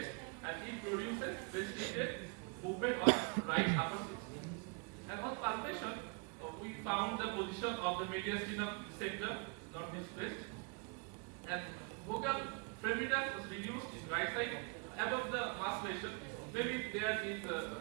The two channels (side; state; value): left; quieter; 35.6 dB